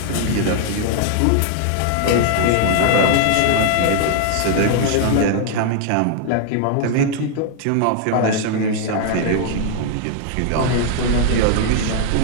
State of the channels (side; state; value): both; different; correlation 0.00